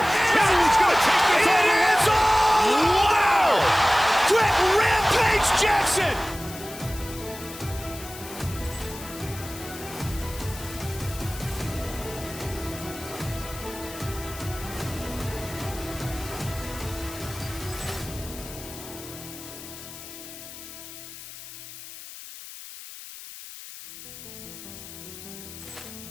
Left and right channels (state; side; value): noise; left; hiss, 14 dB below the sound